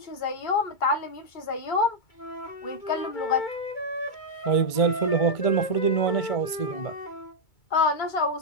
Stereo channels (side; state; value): right; late; 2.3 ms